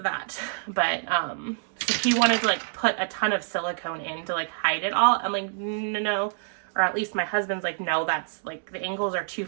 that. But so he wanted to like put a ton of silicone in to like hide it all. I'm like, no, or at least my husband's like, no, that's like the angles are too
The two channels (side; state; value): left; silent; digital silence